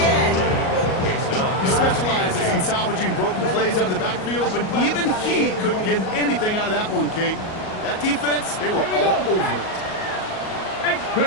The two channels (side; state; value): right; late; 38 ms